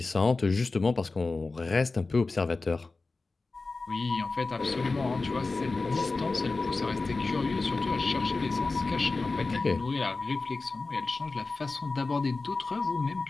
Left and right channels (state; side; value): quieter; right; 3.7 dB